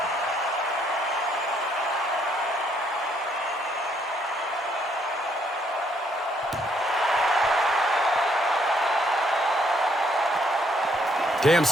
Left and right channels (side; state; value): both; normal; correlation 0.69